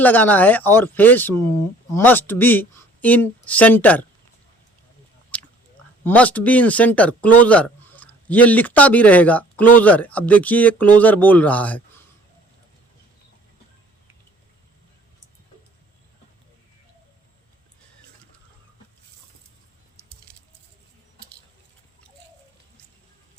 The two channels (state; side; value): normal; both; correlation 0.54